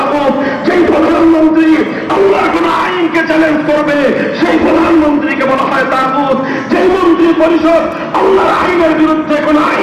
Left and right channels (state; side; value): identical; both; correlation 1.00